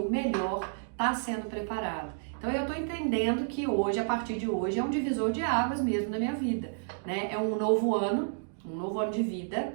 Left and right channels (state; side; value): silent; left; digital silence